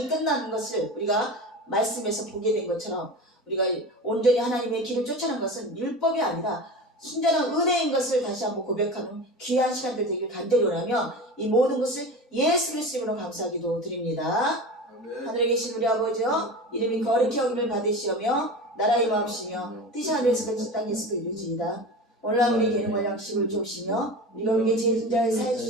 끝나는 것을 우리가 말씀에서 보게 된 것처럼 우리가 온전히 하나님의 길을 쫓아가는 것은 율법이 아니라 순전한 은혜인 것을 다시 한번 고백하는 귀한 시간들 되길 간절히 원하며 이 모든 것을 예수 그리스도 이름으로 감사하기도 드립니다. 아멘. 하늘에 계신 우리 아버지여 이름이 거룩히 여김을 받으시오며 나라의 마음이시며 뜻이 하늘에서 같이 땅에서도 이루어지이다. 오늘날 우리에게 일용할 양식을 주옵시며 우리가 우리에게 죄진 자를 사해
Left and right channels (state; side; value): normal; both; correlation 0.30